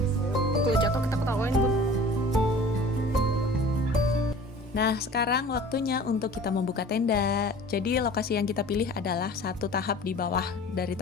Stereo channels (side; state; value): both; normal; correlation 0.44